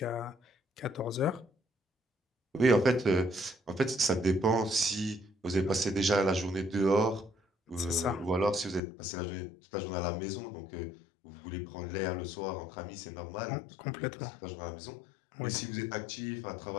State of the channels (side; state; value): right; drops out; at 8.8 s